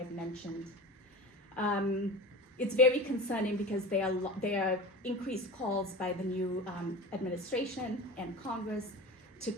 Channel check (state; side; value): normal; both; correlation 0.31